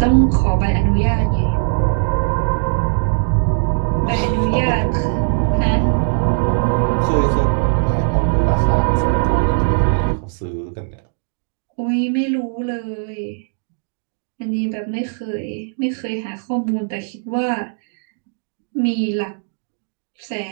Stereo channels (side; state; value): left; silent; digital silence